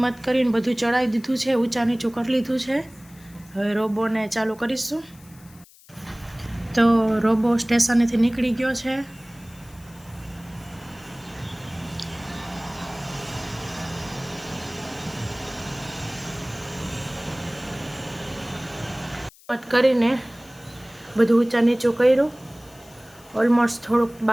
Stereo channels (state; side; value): noise; left; hiss, 25 dB below the sound